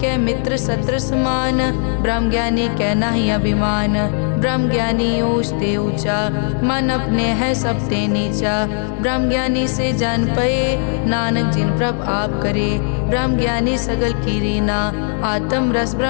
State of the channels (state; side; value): silent; right; 56 dB below the other